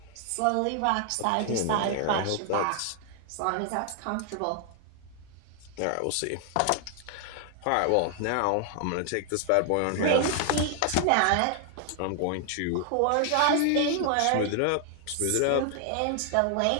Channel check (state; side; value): different; both; correlation 0.00